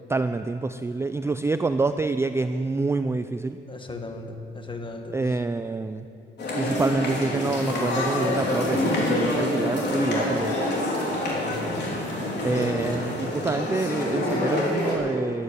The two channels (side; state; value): both; normal; correlation 0.63